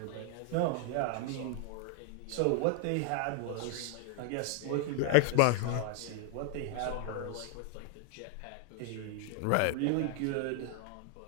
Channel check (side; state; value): both; different; correlation 0.00